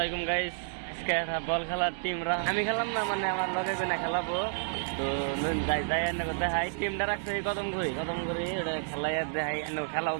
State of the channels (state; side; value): silent; left; digital silence